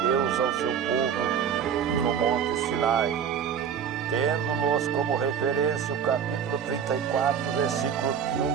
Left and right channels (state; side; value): quieter; left; 7.9 dB